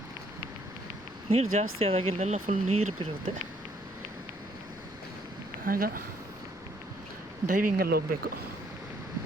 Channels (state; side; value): noise; left; rumble, 25 dB below the sound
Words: ನೀರು ಜಾಸ್ತಿ ಆದಾಗ ಇಲ್ಲೆಲ್ಲ ಫುಲ್ ನೀರು ಬಿರುತ್ತೆ. ಆಗ ಡೈವಿಂಗಲ್ಲಿ ಹೋಗಬೇಕು.